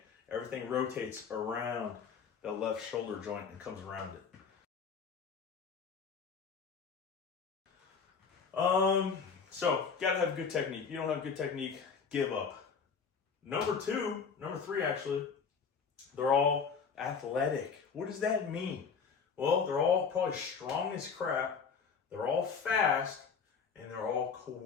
Everything rotates around the left shoulder joint and comes around it. So gotta have good technique. If you don't have good technique, give up. Number three actually, they're all athletic. What does that mean? Well, they're all probably strong as crap, they're all fast, and they're all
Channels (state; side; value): quieter; right; 5.9 dB